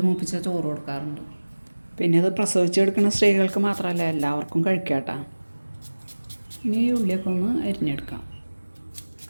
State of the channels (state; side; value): inverted; both; correlation -1.00